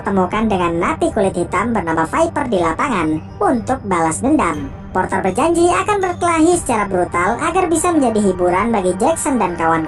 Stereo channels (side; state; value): both; identical; correlation 1.00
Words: dengan napi kulit hitam bernama Viper di lapangan untuk balas dendam. Porter berjanji akan berkelahi secara brutal agar bisa menjadi hiburan bagi Jackson dan